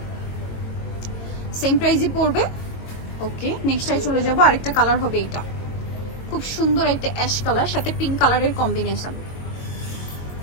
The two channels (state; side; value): late; right; 22 ms